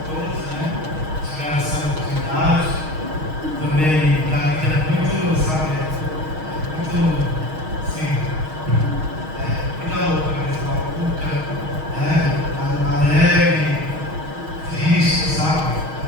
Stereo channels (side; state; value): left; late; 6.4 ms